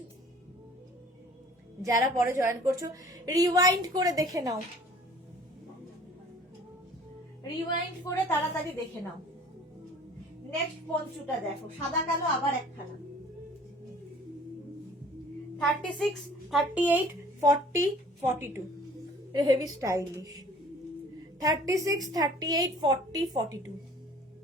যারা পরে জয়েন করছো রিওয়াইন্ড করে দেখে নাও, রিওয়াইন্ড করে তাড়াতাড়ি দেখে নাও। নেক্সট পঞ্চুটা দেখো, সাদা কালো, আবার একখানা। 36, 38, 40, 42, হেভি স্টাইলিশ। 36, 38, 40, 42।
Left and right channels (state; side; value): normal; both; correlation 0.50